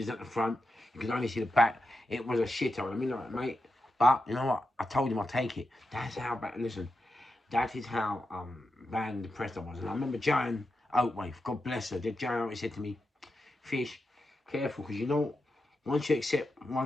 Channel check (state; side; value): normal; both; correlation 0.88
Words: at the front. You could only see the back. It was a shithole. I mean, like, mate. But you know what? I told him I'll take it. That's how bad. Listen, that is how bad and depressed I was. And I remember Joan Oatway, God bless her. Joan always said to me, Fish, careful, because you know, once you accept